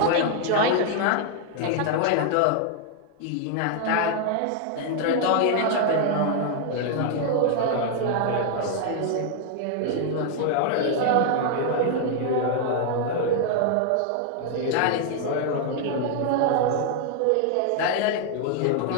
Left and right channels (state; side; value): different; both; correlation 0.00